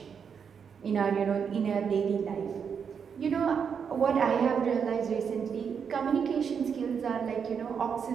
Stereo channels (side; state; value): left; quieter; 6.8 dB